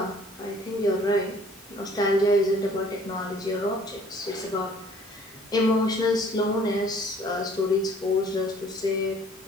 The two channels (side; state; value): both; normal; correlation 0.55